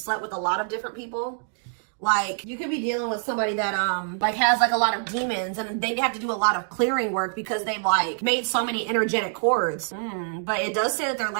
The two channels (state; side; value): silent; left; digital silence